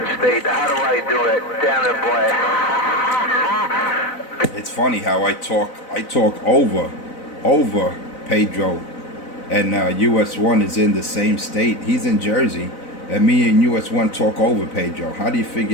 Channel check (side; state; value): right; late; 4.0 ms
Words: state. How do I do it? Damn it, boy. It's funny how I talk over Pedro, and US1 is in the same state. He's in Jersey, and me and US1 talk over Pedro. How do you